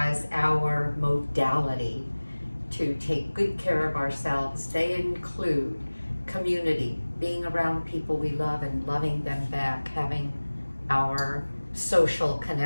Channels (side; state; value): both; inverted; correlation -1.00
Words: our modality to take good care of ourselves. They include community, being around people we love and loving them back, having our social